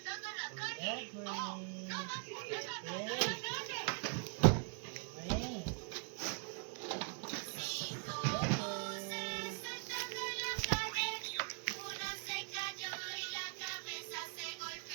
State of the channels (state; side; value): quieter; left; 39.9 dB